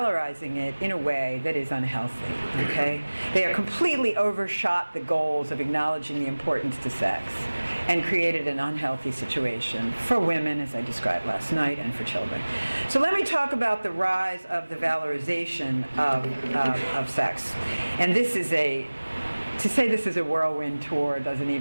it in a way that is unhealthy, okay? They are completely overshot the goals of acknowledging the importance to sex and created an unhealthy situation for women, as I described last night, and for children. So let me talk about the rise of the valorization of sex. And this is to say this is a whirlwind tour doesn't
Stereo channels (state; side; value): inverted; both; correlation -1.00